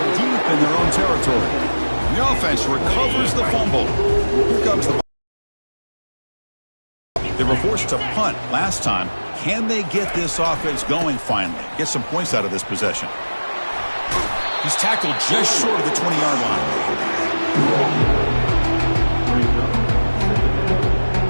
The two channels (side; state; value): both; inverted; correlation -1.00